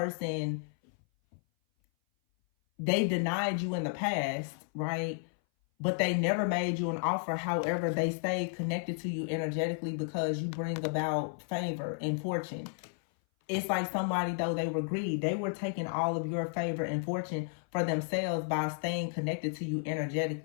they denied you in the past, right? But they never made you an offer. However, they stayed connected to you energetically because you bring about favor and fortune. It's like somebody, though, they were greedy. They were taking all of your favor and fortune for themselves by staying connected to you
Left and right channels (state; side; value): silent; right; 56 dB below the other